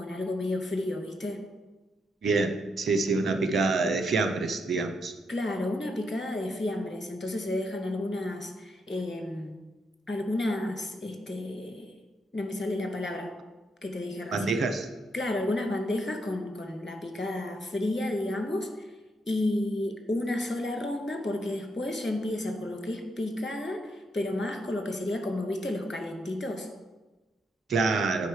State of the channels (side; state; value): both; normal; correlation 0.79